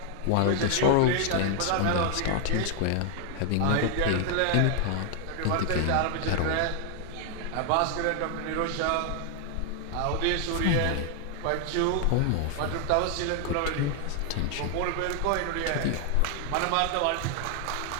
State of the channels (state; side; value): different; both; correlation 0.00